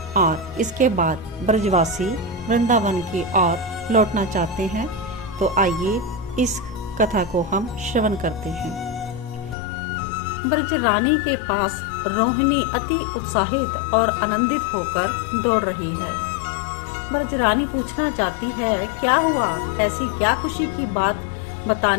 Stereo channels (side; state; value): right; drops out; at 9.6 s